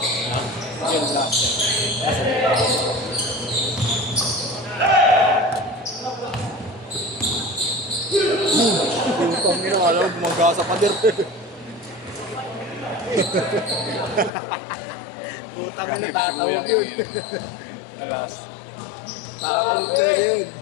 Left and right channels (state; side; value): drops out; right; at 14.3 s